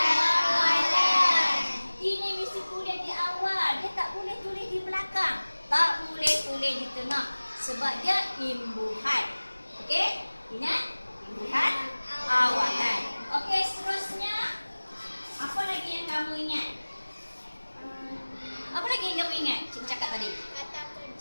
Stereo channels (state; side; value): inverted; both; correlation -1.00